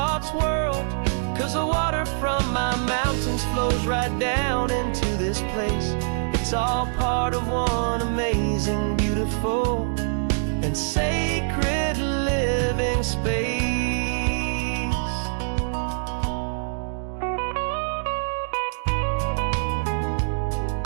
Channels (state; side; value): silent; left; digital silence